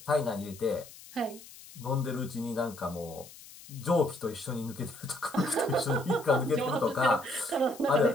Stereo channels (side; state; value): left; noise; hiss, 18 dB below the sound